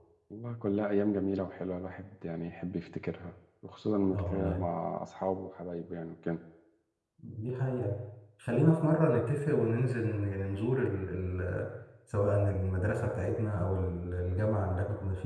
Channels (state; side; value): identical; both; correlation 1.00